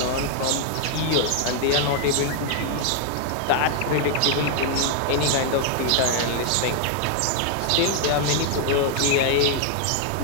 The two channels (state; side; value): different; both; correlation 0.00